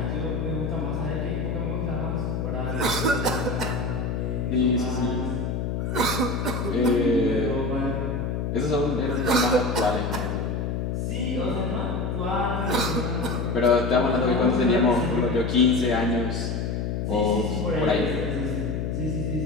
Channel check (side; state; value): left; noise; hum, 1 dB below the sound